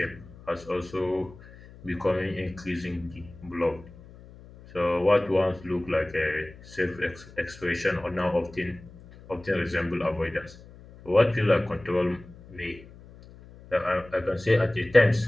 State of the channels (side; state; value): left; noise; hum, 20 dB below the sound